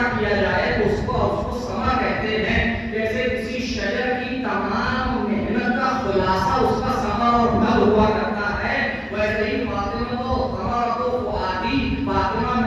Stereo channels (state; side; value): identical; both; correlation 1.00